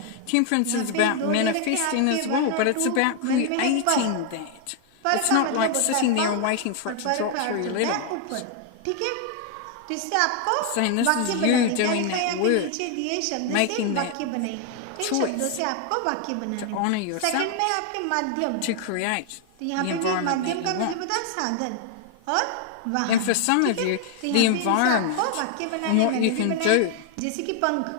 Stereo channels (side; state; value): both; different; correlation 0.00